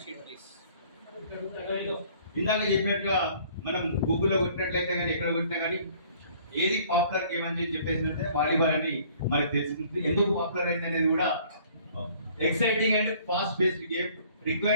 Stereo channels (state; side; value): inverted; both; correlation -0.56